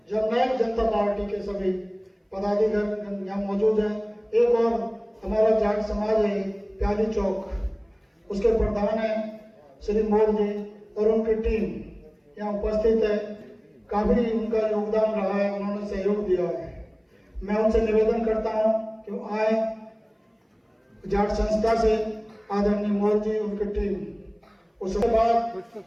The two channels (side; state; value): both; identical; correlation 1.00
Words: जननायक जनता पार्टी के सभी पदाधिकारी यहाँ मौजूद हैं। एक और हमारा जाट समाज है प्यादी चौक, उसके प्रधान है श्री मोर जी और उनकी टीम यहाँ उपस्थित है। काफी उनका योगदान रहा है, उन्होंने सहयोग दिया है। मैं उनसे निवेदन करता हूँ कि आए, जाट संस्था से आदरणीय मोर जी, उनकी टीम। उसके बाद